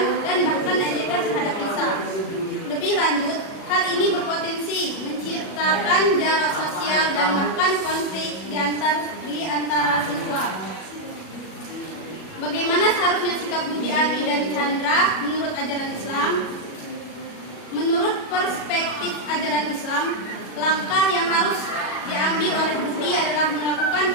dan bahkan ejekan terhadap Risa. Lebih lanjut, hal ini berpotensi menciptakan jarak sosial dan bahkan konflik di antara siswa. Bagaimana seharusnya sikap Budi, Ani, dan Chandra menurut ajaran Islam? Menurut perspektif ajaran Islam, langkah yang harus diambil oleh Budi adalah melakukan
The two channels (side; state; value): right; late; 37 ms